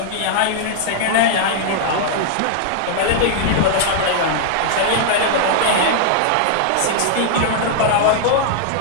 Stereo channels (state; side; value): different; both; correlation -0.01